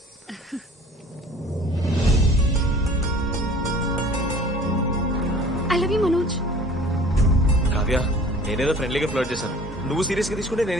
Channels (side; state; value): both; normal; correlation 0.48